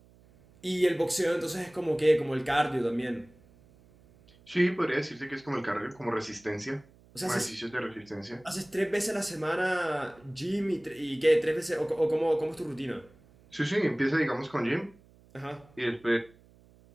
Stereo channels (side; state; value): right; noise; hum, 27 dB below the sound